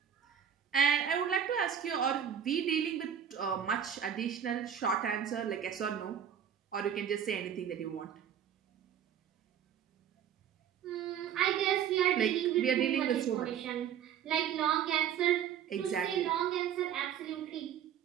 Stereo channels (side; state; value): left; quieter; 8.9 dB